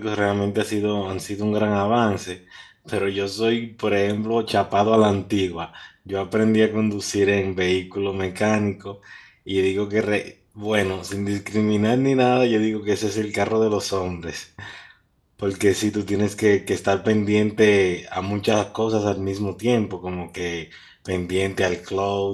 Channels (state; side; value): identical; both; correlation 1.00